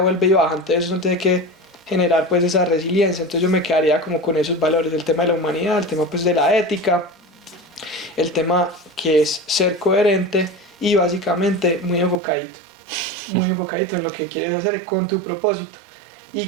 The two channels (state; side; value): drops out; left; at 12.2 s